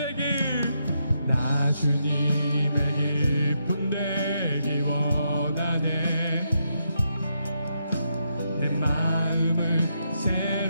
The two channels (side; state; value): both; inverted; correlation -0.80